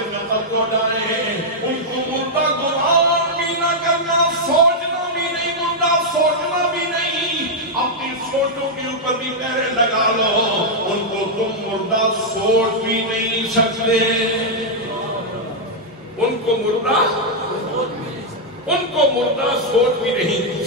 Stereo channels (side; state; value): both; normal; correlation -0.04